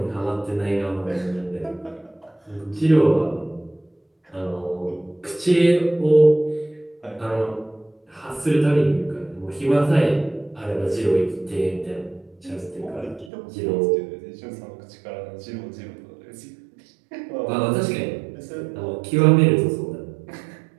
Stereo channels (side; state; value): left; drops out; at 13.3 s